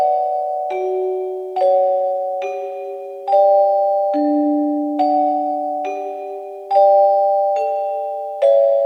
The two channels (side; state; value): both; identical; correlation 1.00